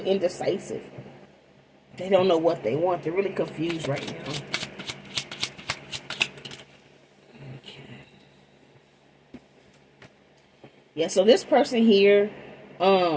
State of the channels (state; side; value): identical; both; correlation 1.00